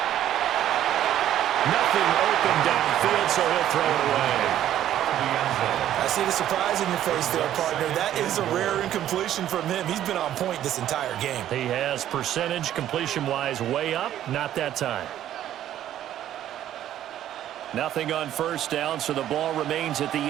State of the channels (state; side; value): quieter; left; 11.8 dB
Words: Nothing open downfield, so he'll throw it away. I see the surprise in your face there, partner. That is a rare incompletion from him. He's been on point this entire game. He has percentage completion-wise way up, not that time. Nothing on first down, so the ball remains at the